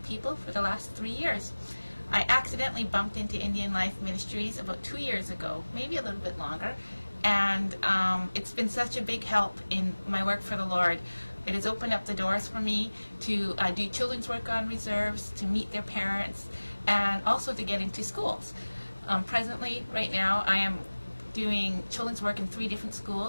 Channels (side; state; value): both; inverted; correlation -1.00